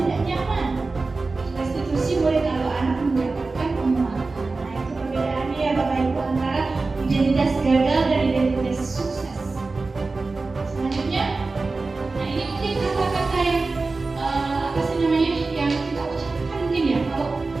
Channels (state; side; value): quieter; left; 3.7 dB